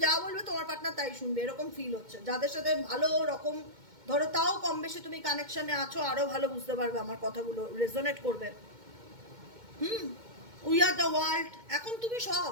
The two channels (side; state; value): left; late; 2.2 ms